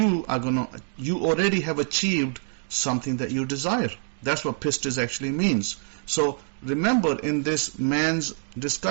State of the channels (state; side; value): silent; left; digital silence